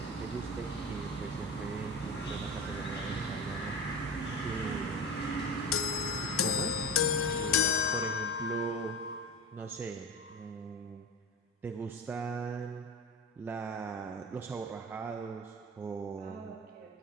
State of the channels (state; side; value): normal; both; correlation 0.31